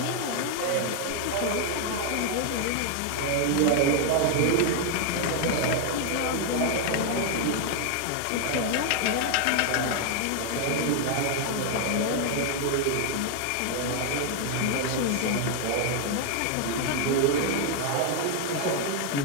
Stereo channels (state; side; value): different; both; correlation 0.00